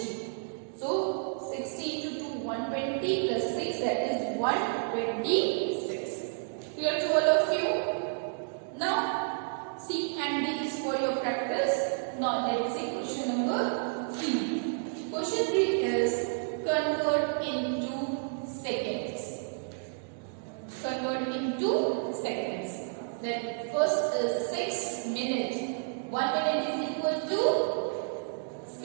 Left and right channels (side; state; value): left; silent; digital silence